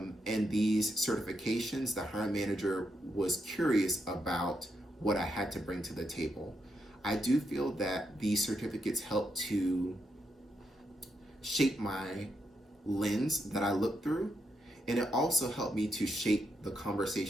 these certifications, the hiring manager was curious about what I had to bring to the table. I do feel that these certificates help to shape my lens that I look through, and it also helped me to shape the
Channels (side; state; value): both; normal; correlation 0.81